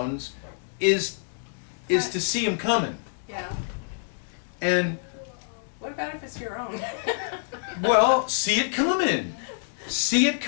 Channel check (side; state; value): right; silent; digital silence